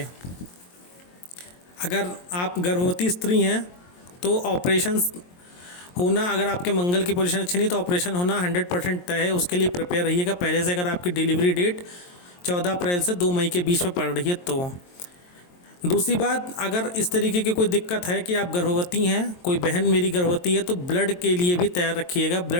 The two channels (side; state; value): right; late; 22 ms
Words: अगर आप गर्भवती स्त्री हैं तो ऑपरेशन होना, अगर आपके मंगल की पोजीशन अच्छी नहीं तो ऑपरेशन होना 100% तय है, उसके लिए प्रिपेयर रहिएगा पहले से। अगर आपकी डिलीवरी डेट 14 अप्रैल से 2 मई के बीच में पड़ रही है तो। दूसरी बात, अगर इस तरीके की कोई दिक्कत है कि आप गर्भवती हैं, कोई बहन मेरी गर्भवती है, तो ब्लड के लिए भी तैयार रखिएगा,